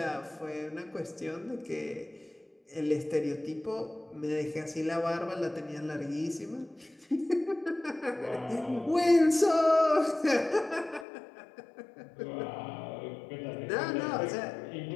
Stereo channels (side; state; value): right; drops out; at 11.1 s